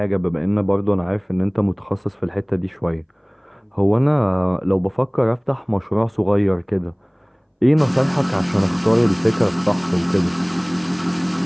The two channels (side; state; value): both; identical; correlation 1.00